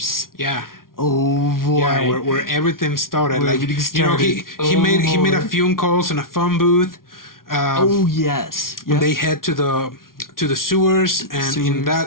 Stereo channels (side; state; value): right; late; 0.92 ms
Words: yeah. Oh boy. Yeah, where everything started. Where Like, everything you know, started. he made a boy. phone calls in a phone booth. Oh yes. Yep. They head to the sewers, and